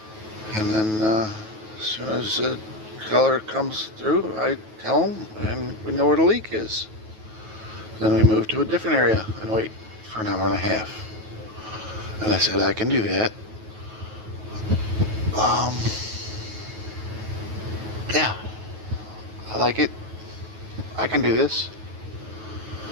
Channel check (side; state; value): left; late; 9.3 ms